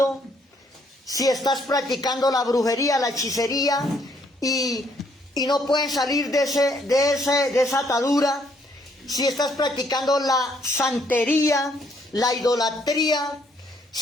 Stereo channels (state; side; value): normal; both; correlation 0.68